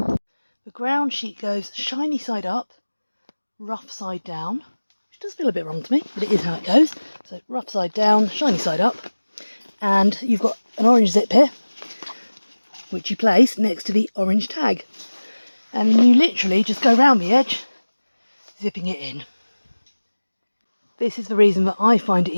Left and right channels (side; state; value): both; inverted; correlation -1.00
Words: The ground sheet goes shiny side up, rough side down, which does feel a bit wrong to me, but it is how it goes. So rough side down, shiny side up, and you've got an orange zip here, which you place next to the orange tag. And you literally just go round the edge, zipping it in. This is the reason that I find it